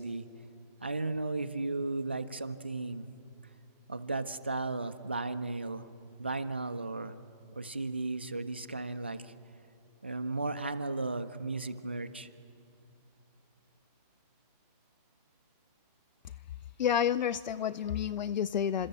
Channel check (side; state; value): both; inverted; correlation -0.47